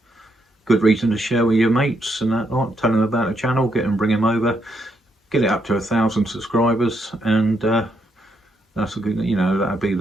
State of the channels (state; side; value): normal; both; correlation 0.77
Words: good reason to share with your mates and that, like, tell them about the channel, bring them over, get it up to 1,000 subscribers, and that's a good, you know, that'd be